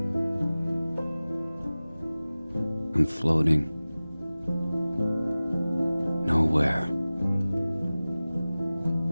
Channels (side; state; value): both; inverted; correlation -0.97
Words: I'm floating nowhere.